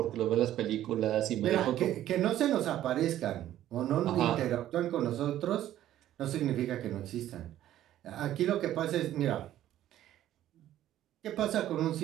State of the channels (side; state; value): left; quieter; 12.7 dB